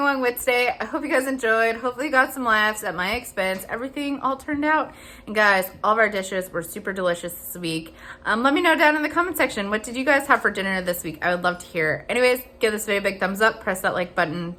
with today. I hope you guys enjoyed. Hopefully you got some laughs at my expense. Everything all turned out. And guys, all of our dishes were super delicious this week. Let me know down in the comment section, what did you guys have for dinner this week? I would love to hear. Anyways, give this video a big thumbs up, press that like button,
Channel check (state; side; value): identical; both; correlation 1.00